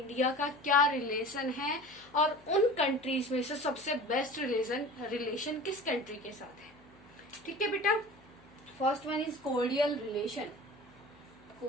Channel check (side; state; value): left; noise; hum, 28 dB below the sound